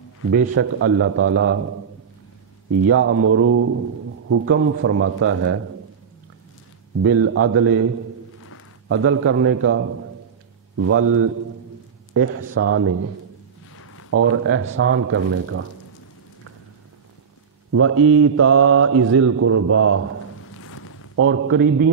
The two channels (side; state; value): left; quieter; 6.7 dB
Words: بے شک اللہ تعالی، یامر، حکم فرماتا ہے، بالعدل، عدل کرنے کا، والاحسان، اور احسان کرنے کا، وایتاء ذی القربی، اور